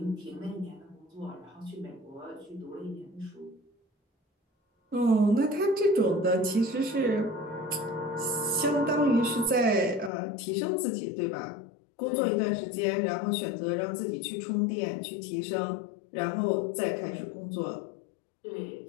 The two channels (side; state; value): right; drops out; at 10.1 s